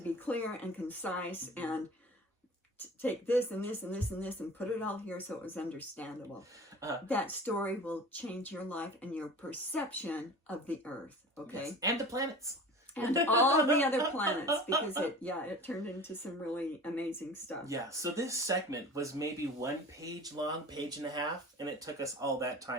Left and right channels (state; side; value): normal; both; correlation 0.39